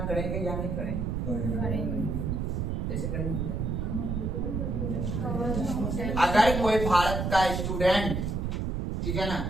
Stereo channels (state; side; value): noise; right; rumble, 1 dB below the sound